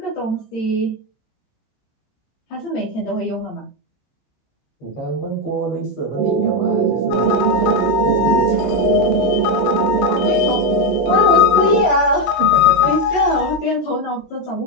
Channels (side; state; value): right; late; 17 ms